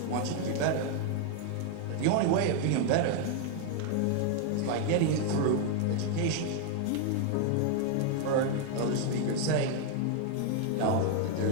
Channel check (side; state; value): both; different; correlation 0.00